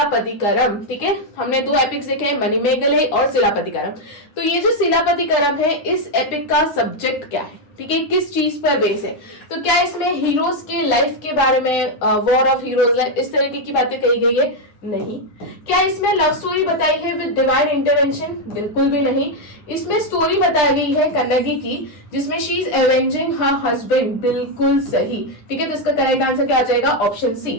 ठीक है, हमने 2 एपिक्स देखे हैं, मणिमेगले और सिलापतिकरम। तो ये जो सिलापतिकरम है, इस एपिक का सब्जेक्ट क्या है? ठीक है, किस चीज पर बेस है? तो क्या इसमें हीरोज के लाइफ के बारे में, वॉर ऑफ हीरोज लाइफ, इस तरीके की बातें कही गई है? नहीं। क्या इसमें लव स्टोरी बताई है विद डिवाइन इंटरवेंशन? बिल्कुल भी नहीं। इसमें स्टोरी बताई गई है कन्नगी की, जिसमें शी इज एवेंजिंग हर हस्बैंड। बिल्कुल सही। ठीक है, तो इसका करेक्ट आंसर क्या आ जाएगा? Option C.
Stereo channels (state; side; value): late; right; 9.7 ms